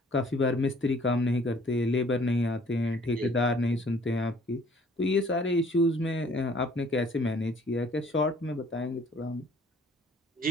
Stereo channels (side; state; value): both; normal; correlation 0.57